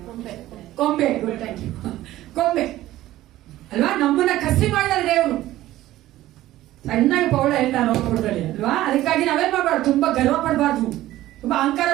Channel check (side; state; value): left; quieter; 15.2 dB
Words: ಕೊಂಬೆ ಕೊಂಬೆ ಅಲ್ವಾ? ನಮ್ಮನ್ನ ಕಸಿ ಮಾಡಿದ ದೇವರು. ಸಣ್ಣಗೆ ಪೌಳ ಹೇಳ್ತಾರೆ ನೋಡ್ಕೊಡ್ತಾರೆ ಅಲ್ವಾ? ಅದಕ್ಕಾಗಿ ನಾವೇನ್ ಮಾಡಬಾರ್ದು, ತುಂಬಾ ಗರ್ವ ಪಡಬಾರ್ದು, ತುಂಬಾ ಅಹಂಕಾರ